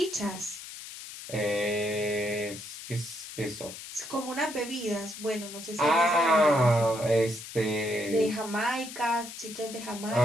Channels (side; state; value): left; noise; hiss, 12 dB below the sound